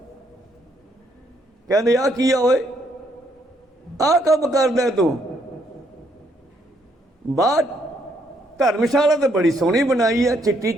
कहते आ की होए, आ कम करदा तू? बाहर धर्मशाला तो बड़ी सोहनी बनाई है, चिट्टी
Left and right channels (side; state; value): both; normal; correlation 0.72